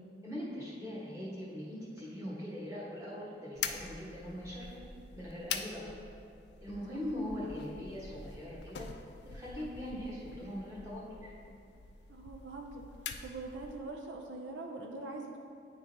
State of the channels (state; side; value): normal; both; correlation 0.52